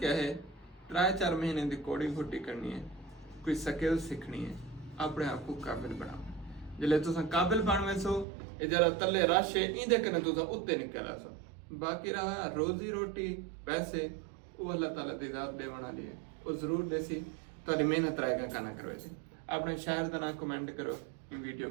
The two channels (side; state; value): left; drops out; at 8.2 s